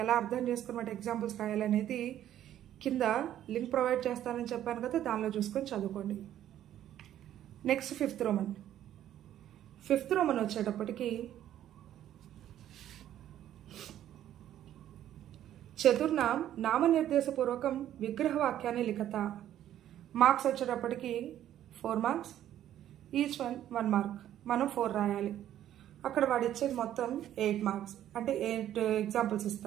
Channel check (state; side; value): quieter; left; 11.7 dB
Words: ఎలా అర్థం చేసుకున్నమాట ఎగ్జాంపుల్స్ రాయాలనేది కింద లింక్ ప్రొవైడ్ చేస్తానని చెప్పాను కదా, దానిలో చూసుకొని చదువుకోండి. Next 5th Roman. 5th Roman వచ్చేటప్పటికి చతుర్నాం నామనిర్దేశపూర్వకం విగ్రహవాక్యాన్ని లిఖత. మార్క్స్ వచ్చేటప్పటికి 4 మార్క్స్, ఈచ్ వన్ 1 మార్క్. మనం 4 రాయాలి. అక్కడ వాడు ఇచ్చేది మొత్తం 8 మార్క్స్, అంటే 8 ఎగ్జాంపుల్స్